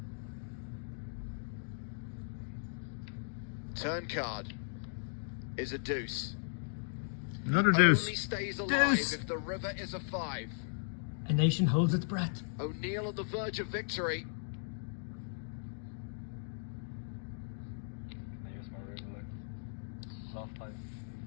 Turn card is a deuce. Another Only deuce. stays alive Deuce. if the river is a 5. A nation holds its breath. O'Neill on the verge of victory.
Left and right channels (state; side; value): silent; right; digital silence